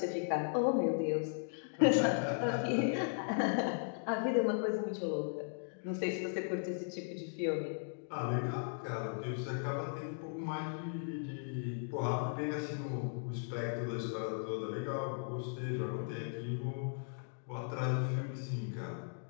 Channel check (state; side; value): silent; right; digital silence